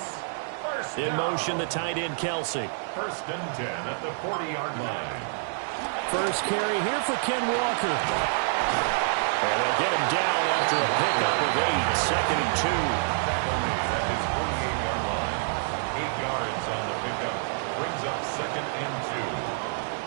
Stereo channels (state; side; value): silent; left; digital silence